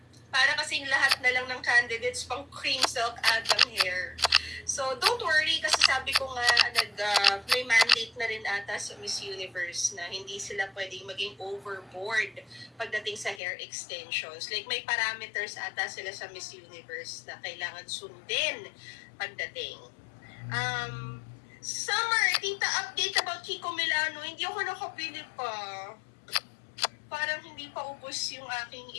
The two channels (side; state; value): right; drops out; at 13.4 s